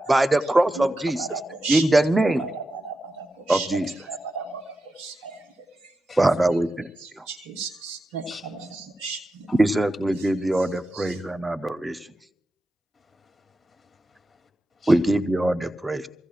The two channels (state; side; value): normal; both; correlation 0.90